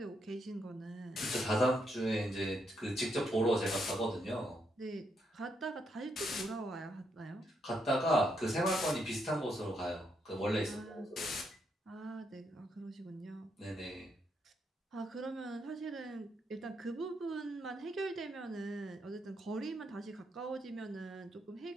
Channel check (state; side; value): normal; both; correlation 0.78